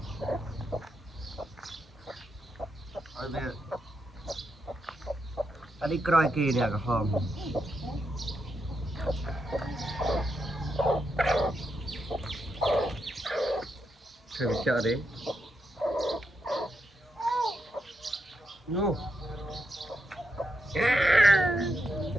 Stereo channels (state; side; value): normal; both; correlation 0.83